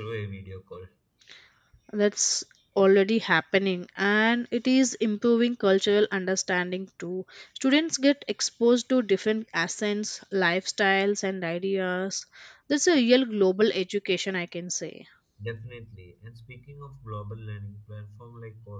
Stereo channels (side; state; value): both; identical; correlation 1.00